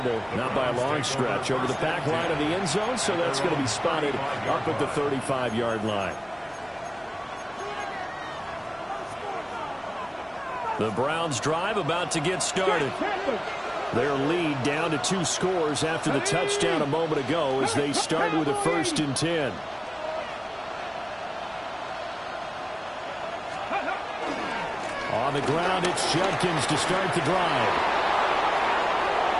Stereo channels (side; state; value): both; identical; correlation 1.00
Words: not by a long stretch, over the back line of the end zone, so that's going to be spotted up at the 35-yard line. The Browns drive about to get started. Their lead down to 2 scores after the touchdown a moment ago as they start with a first and 10. On the ground, it's Judkins to start the drive.